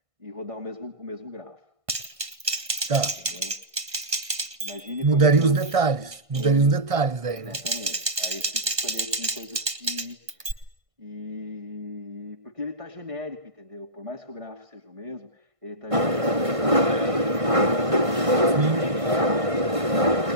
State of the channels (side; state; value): left; late; 1.5 ms